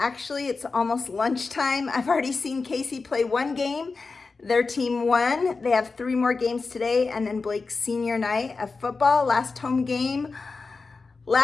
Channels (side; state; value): right; quieter; 4.2 dB